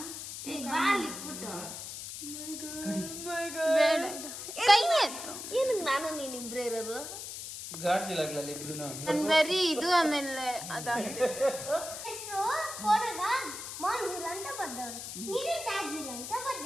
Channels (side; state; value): left; noise; hiss, 8 dB below the sound